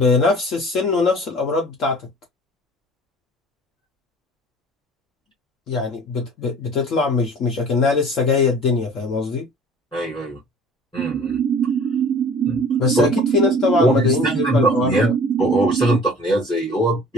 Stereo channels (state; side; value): normal; both; correlation 0.46